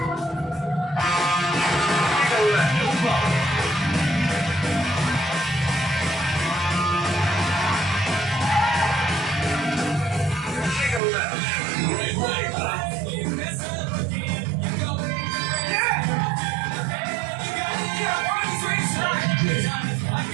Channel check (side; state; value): left; drops out; at 11.0 s